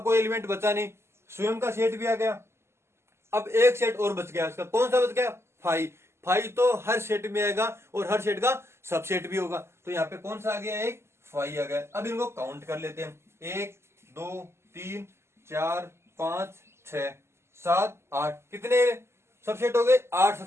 कोई एलिमेंट बचा नहीं, स्वयं का सेट भी आ गया। अब एक सेट और बच गया, उसका कौन सा बच गया, फाई। फाई तो हर सेट में आएगा और हर सेट का सबसेट भी होगा। तो यहाँ पे कौन सा आ गया, एक फाई आ गया। अब इनको काउंट कर लेते हैं, 1 2 3 4 5 6 7 8, कितने सबसेट हो गए, 8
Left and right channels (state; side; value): late; left; 0.13 ms